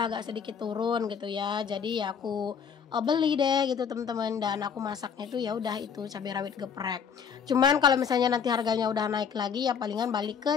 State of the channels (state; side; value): quieter; right; 7.0 dB